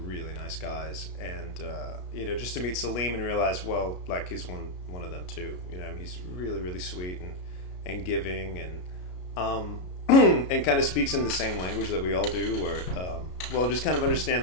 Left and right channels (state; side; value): late; right; 33 ms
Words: nice guys, and just to meet Salim and realize, well, like he's one of them too. He's really, really sweet and giving, and and kind of speaks in the same language that we all do. Where just kind of understand